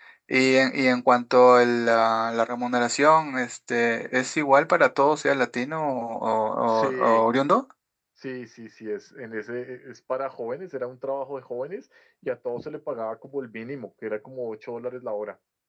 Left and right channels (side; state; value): both; identical; correlation 1.00